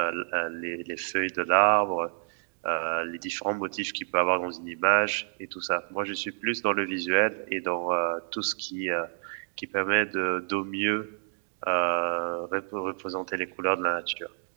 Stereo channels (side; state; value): left; silent; digital silence